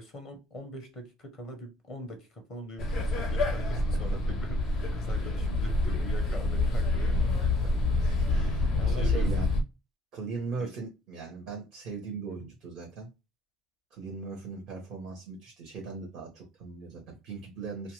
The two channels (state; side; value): normal; both; correlation 0.62